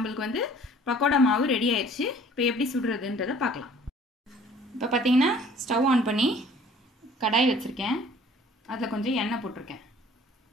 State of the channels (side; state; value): both; normal; correlation 0.53